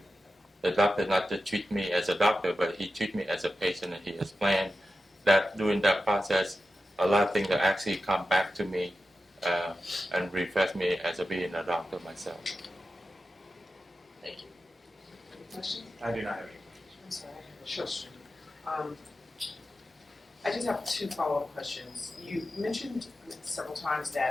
The doctor not to treat me as a doctor, but he treat me as a patient, and he explained that during that process, a lot of things that actually come back to me and refresh me as a being a doctor myself. Thank you. Any questions? I do not have any. I'm sorry, I have a Sure. question. I just have two follow-up questions. You mentioned several times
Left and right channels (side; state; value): both; normal; correlation 0.92